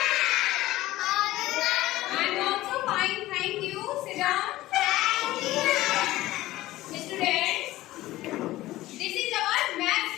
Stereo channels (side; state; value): right; quieter; 16.6 dB